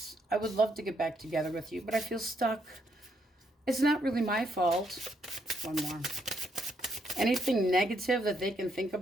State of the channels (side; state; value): both; normal; correlation 0.75